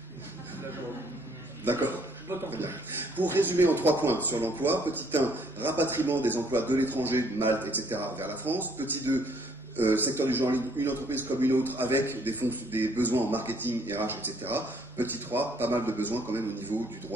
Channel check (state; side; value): normal; both; correlation 0.64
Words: D'accord. Très bien. Pour résumer en 3 points sur l'emploi, petit 1, rapatriement des emplois de l'étranger, de Malte, etc. vers la France. Petit 2, secteur du genre, une entreprise comme une autre avec des besoins en marketing, RH, etc. Petit 3, pas mal de besoins quand même au niveau du